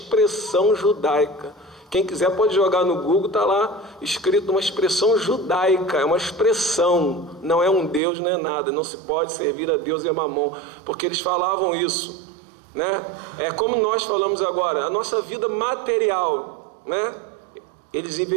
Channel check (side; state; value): left; drops out; at 8.0 s